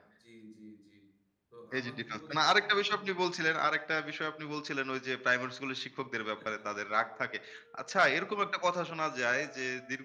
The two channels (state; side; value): identical; both; correlation 1.00